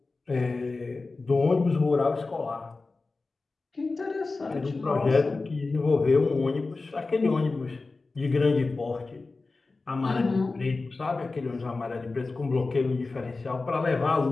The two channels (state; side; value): quieter; right; 3.7 dB